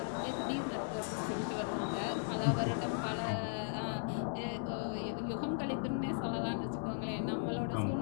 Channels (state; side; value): silent; right; digital silence